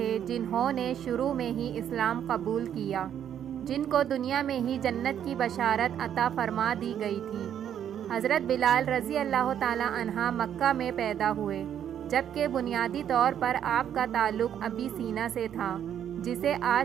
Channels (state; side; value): quieter; left; 9.6 dB